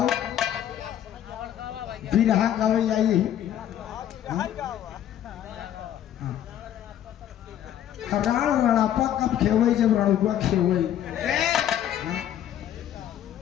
बिरहा गावे जाइए। राण रणापा कब खेवे, जब रणुआ खेवे।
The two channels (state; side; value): quieter; right; 10.9 dB